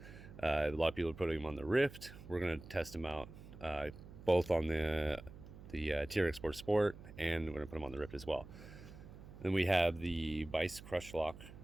A lot of people are putting them on the Rift. We're going to test them out both on the TRX4-SPORT, and we're going to put them on the Rift as well. Then we have the Vice Crushlock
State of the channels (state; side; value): noise; right; hum, 16 dB below the sound